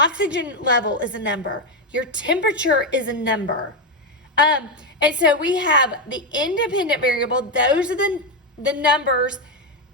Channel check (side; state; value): both; normal; correlation 0.07